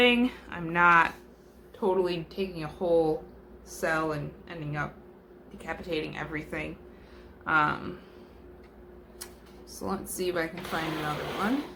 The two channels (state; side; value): identical; both; correlation 1.00